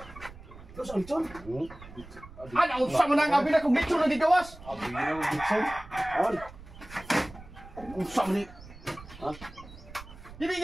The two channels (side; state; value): right; noise; rumble, 17 dB below the sound